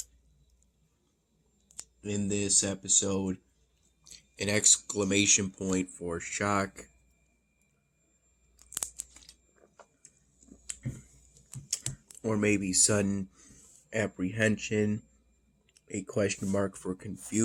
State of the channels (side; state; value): both; identical; correlation 1.00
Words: In this episode, an exclamation point for shock, or maybe sudden apprehension, a question mark for